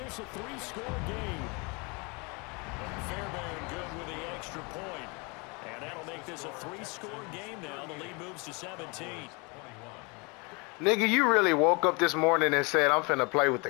a 3-score game. Fairbairn good with the extra point. And that'll make this a 3-score game now. The lead moves to 17. Nigga, you really woke up this morning and said, I'm finna play with the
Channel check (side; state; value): right; quieter; 29.8 dB